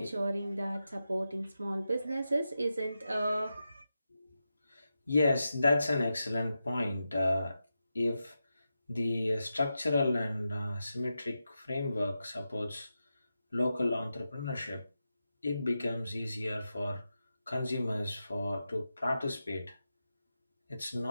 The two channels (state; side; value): inverted; both; correlation -0.90